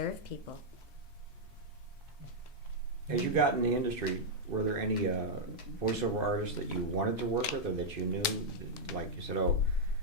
people. As you got in the industry, were there any voiceover artists that you wanted to work with, or that you knew, like you said, oh,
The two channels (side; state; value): both; normal; correlation -0.05